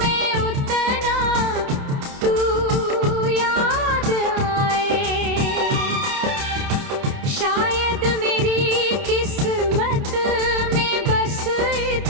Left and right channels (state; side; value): late; left; 29 ms